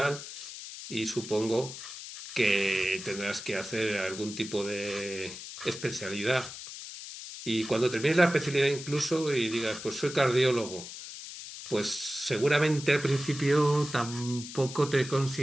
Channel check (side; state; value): left; noise; hiss, 11 dB below the sound